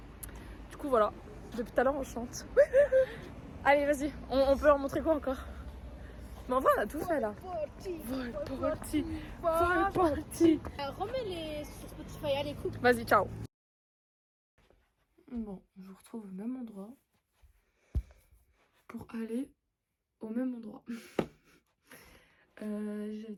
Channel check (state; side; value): identical; both; correlation 1.00